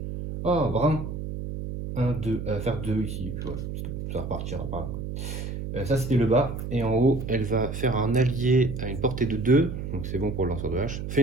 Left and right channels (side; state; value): right; noise; hum, 6 dB below the sound